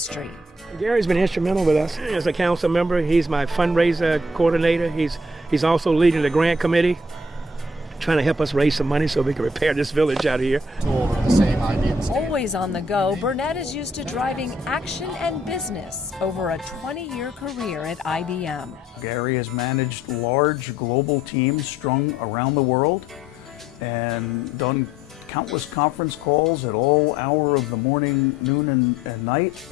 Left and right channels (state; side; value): normal; both; correlation 0.63